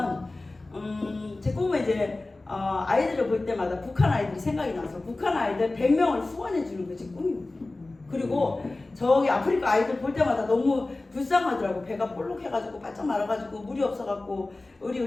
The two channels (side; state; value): right; quieter; 3.1 dB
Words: 이제 아이들을 볼 때마다 북한 아이들이 생각이 나서 북한 아이들 100명을 후원해 주는 게 제 꿈입니다. 그리고 저기 아프리카 아이들 볼 때마다 너무 불쌍하더라고. 배가 볼록해가지고 바짝 말아가지고 물이 없어갖고 우리